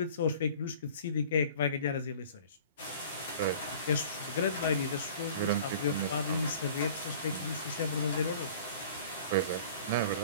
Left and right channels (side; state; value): both; inverted; correlation -0.45